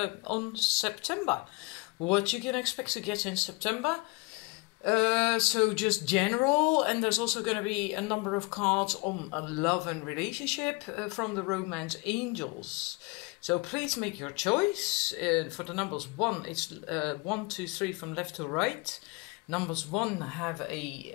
on September. What you can expect to get in September. So just general, and there's also going to be a number of cards on love and relationship from the Romance Angels. So please make your choice. For the numbers 1, it's 1, 2, 3 from left to right. Numbers 1 have a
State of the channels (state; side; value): quieter; right; 26.9 dB